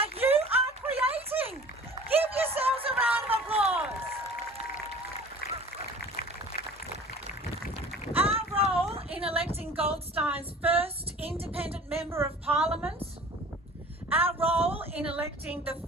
you are creating. Give yourselves a round of applause. Our role in electing Goldstein's first independent member of Parliament, our role in electing the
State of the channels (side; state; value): both; normal; correlation 0.45